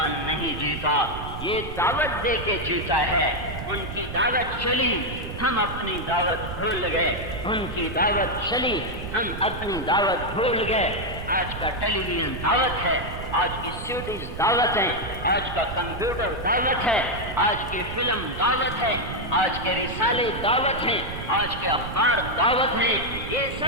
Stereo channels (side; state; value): right; noise; rumble, 9 dB below the sound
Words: نہیں جیتا، یہ دعوت دے کے جیتا ہے۔ ان کی دعوت چلی، ہم اپنی دعوت بھول گئے، ان کی دعوت چلی، ہم اپنی دعوت بھول گئے۔ آج کا ٹیلی ویژن دعوت ہے، آج کی سیڈیز دعوت ہے، آج کا کمپیوٹر دعوت ہے، آج کی فلم دعوت ہے، آج کے رسالے دعوت ہیں، آج کے اخبار دعوت ہیں، یہ